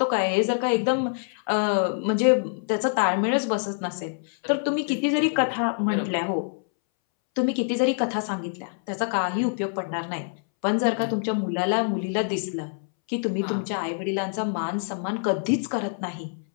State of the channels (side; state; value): right; silent; 61 dB below the other